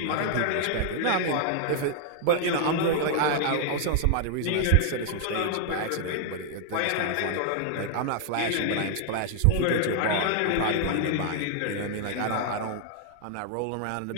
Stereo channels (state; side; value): different; both; correlation 0.00